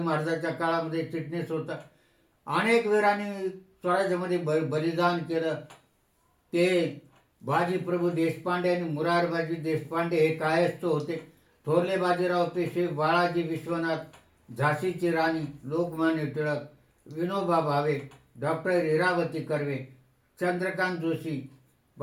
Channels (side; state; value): both; identical; correlation 1.00